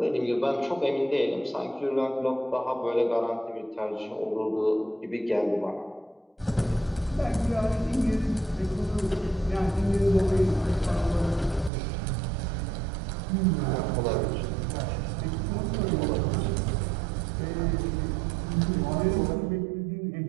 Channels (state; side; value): drops out; left; at 11.7 s